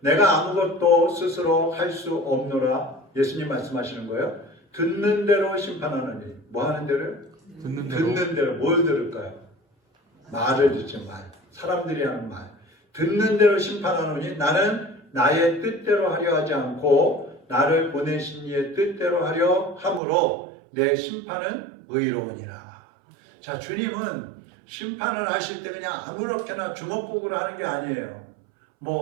내가 아무것도 스스로 할 수 없노라. 예수님 말씀하시는 거예요. 듣는 대로 심판하느니. 뭐 하는 대로요? 듣는 대로. 뭘 들을까요? 말을 듣죠. 말. 사람들이 하는 말. 듣는 대로 심판하노니 나는 나의 뜻대로 하려 하지 않고 나를 보내신 이의 뜻대로 하려 함으로 내 심판은 의로우니라. 자, 주님은 심판을 하실 때 그냥 아무렇게나 주먹구구를 하는 게 아니에요.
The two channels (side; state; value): left; drops out; at 20.0 s